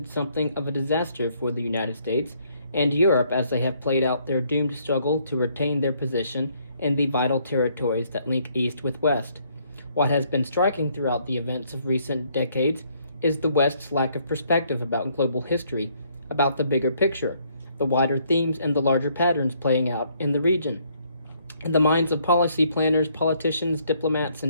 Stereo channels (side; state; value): both; inverted; correlation -0.68